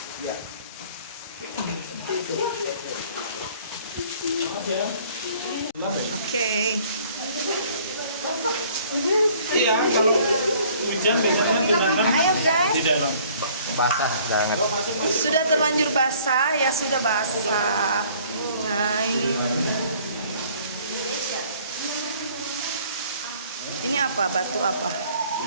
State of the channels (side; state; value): both; inverted; correlation -0.56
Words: Oke. Iya, kalau hujan biasanya genangan Ayo guys. di dalam. basah banget. Sudah terlanjur basah, ya sudah basah. Nah ini. Ini apa? Batu apa?